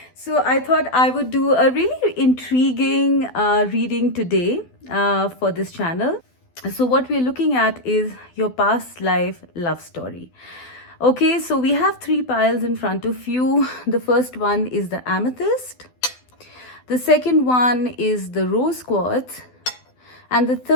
So I thought I would do a really intriguing reading today for this channel. So what we're looking at is your past life love story. Okay, so we have three piles in front of you. The first one is the amethyst. The second one is the rose quartz. And the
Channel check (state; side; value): late; right; 12 ms